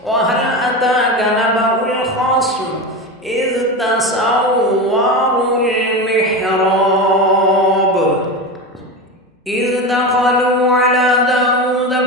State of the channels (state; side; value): normal; both; correlation 0.22